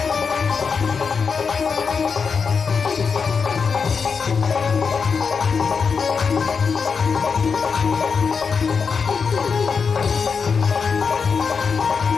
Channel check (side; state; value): right; quieter; 5.6 dB